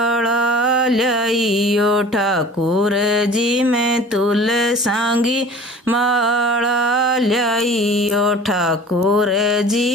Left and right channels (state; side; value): normal; both; correlation 0.44